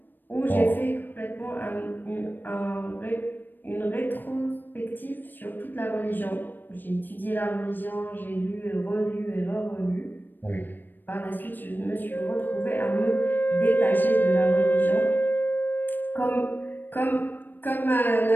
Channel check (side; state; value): right; late; 0.092 ms